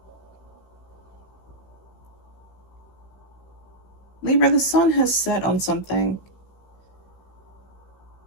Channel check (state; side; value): late; right; 16 ms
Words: Libra, the sun has set on something.